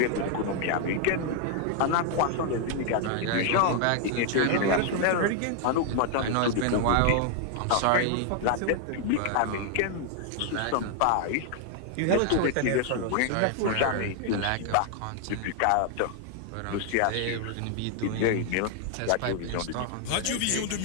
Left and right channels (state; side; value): different; both; correlation 0.00